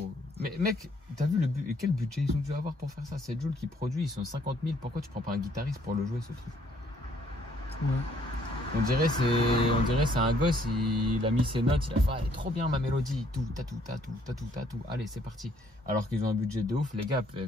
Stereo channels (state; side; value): normal; both; correlation 0.65